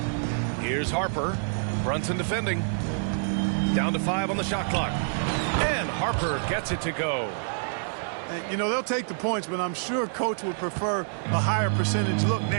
Here's Harper. Brunson defending. Down to 5 on the shot clock. And Harper gets it to go. And, you know, they'll take the points, but I'm sure Coach would prefer a higher percentage look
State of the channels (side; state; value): left; silent; digital silence